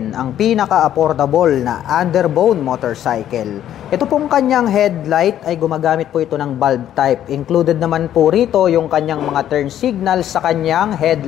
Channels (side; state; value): right; quieter; 11.2 dB